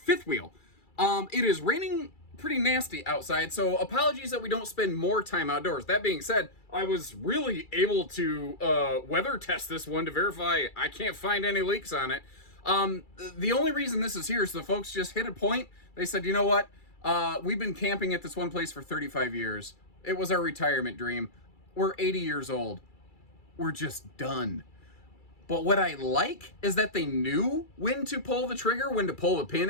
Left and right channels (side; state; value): right; late; 2.3 ms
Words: wheel. It is raining pretty nasty outside, so apologies that we don't spend more time outdoors. That being said, I was really able to weather test this one to verify I can't find any leaks on it. The only reason this is here is the folks just hit a point. They said, you know what? We've been camping at this one place for 35 years. It was our retirement dream. We're 80 years old. We're just done. But what I like is that they knew when to pull the trigger, when to pull the pin,